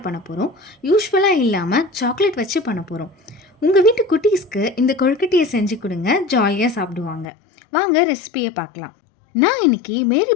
பண்ண போகிறோம். யூஸ்வலாக இல்லாமல் சாக்லேட் வச்சு பண்ண போகிறோம். உங்கள் வீட்டு குட்டீஸ்க்கு இந்த கொழுக்கட்டையை செஞ்சு கொடுங்க, ஜாலியாக சாப்பிடுவாங்க. வாங்க ரெசிபியை பார்க்கலாம். நான் இன்றைக்கி மேரி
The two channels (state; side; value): drops out; right; at 7.2 s